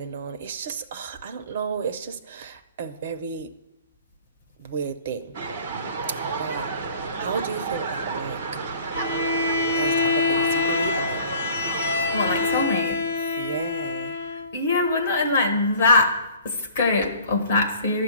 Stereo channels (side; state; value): both; inverted; correlation -0.50